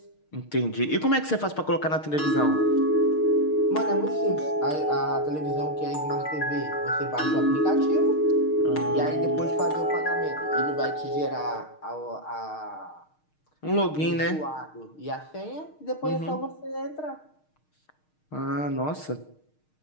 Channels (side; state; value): right; late; 6.5 ms